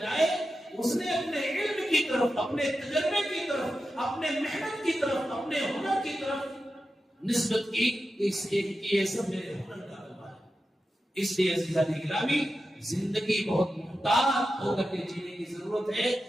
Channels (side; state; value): both; normal; correlation 0.91